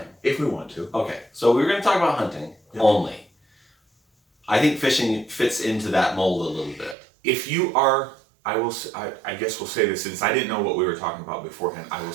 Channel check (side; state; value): left; drops out; at 7.0 s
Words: If we want to. Okay, so we're going to talk about hunting only. I think fishing fits into that mold a little bit. If you are, I guess we'll say this, since I didn't know what we were talking about beforehand, I will